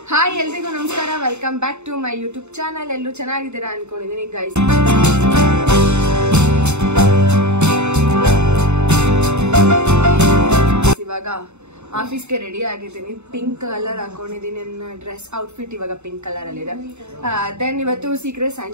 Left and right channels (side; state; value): left; late; 0.82 ms